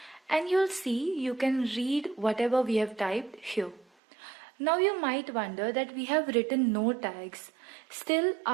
and you'll see you can read whatever we have typed here. Now you might wonder that we have written no tags, still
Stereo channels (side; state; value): left; drops out; at 3.9 s